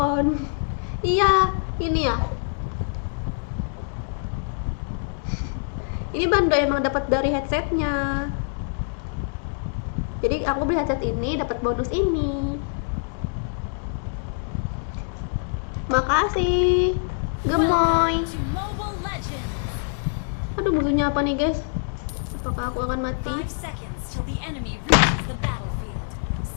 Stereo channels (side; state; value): right; silent; digital silence